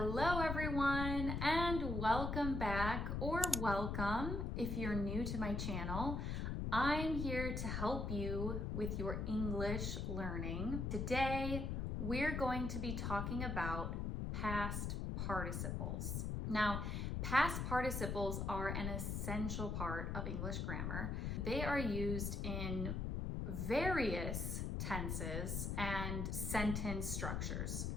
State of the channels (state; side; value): noise; left; rumble, 1 dB below the sound